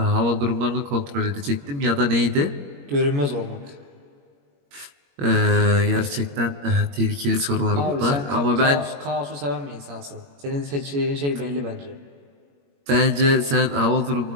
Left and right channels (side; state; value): left; late; 21 ms